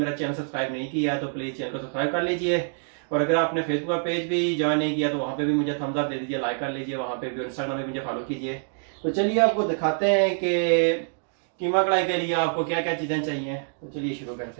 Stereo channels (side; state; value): left; silent; digital silence